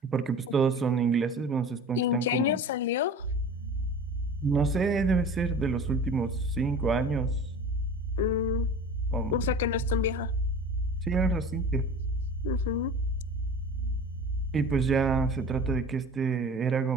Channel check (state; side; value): normal; both; correlation 0.38